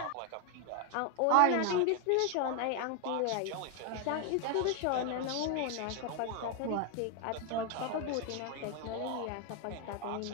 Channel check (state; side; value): different; both; correlation 0.01